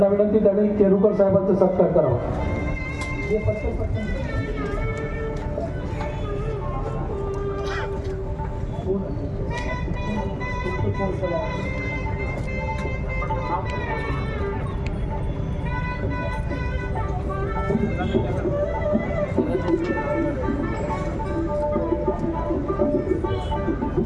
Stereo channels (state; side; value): identical; both; correlation 1.00